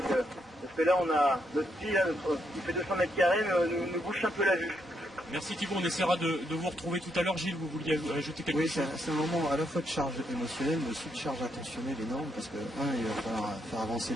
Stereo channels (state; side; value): normal; both; correlation 0.77